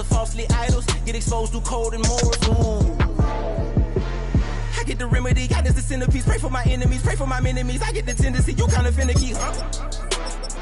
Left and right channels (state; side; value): identical; both; correlation 1.00